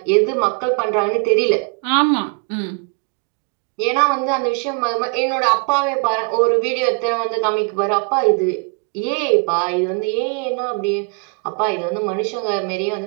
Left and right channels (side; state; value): left; quieter; 33.9 dB